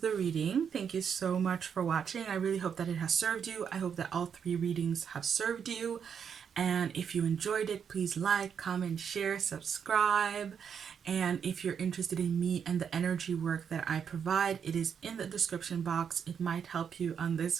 reading. Thank you so much for watching. I really hope that it has served you. I hope that all 3 readings have served you. And if you enjoyed it, please like, comment, share, subscribe. And if you're interested in me and the energy work that I provide, it is in the description box. It might help you on this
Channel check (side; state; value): left; quieter; 7.4 dB